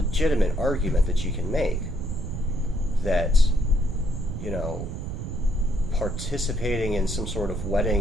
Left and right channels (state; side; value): noise; right; rumble, 6 dB below the sound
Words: argument that you can make that, you know, participating in some sort of